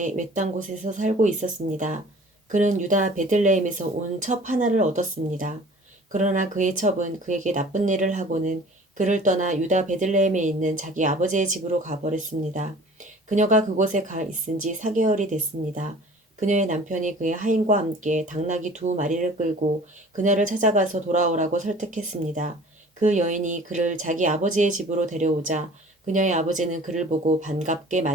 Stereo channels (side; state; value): both; normal; correlation 0.47